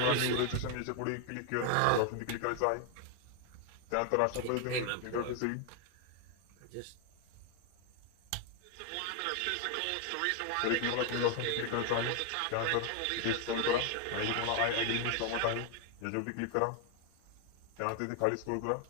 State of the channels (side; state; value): both; different; correlation 0.01